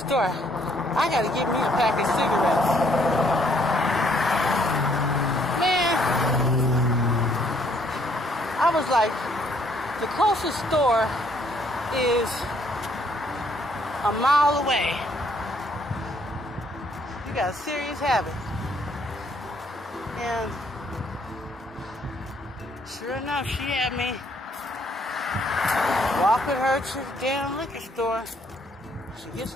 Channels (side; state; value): both; normal; correlation 0.66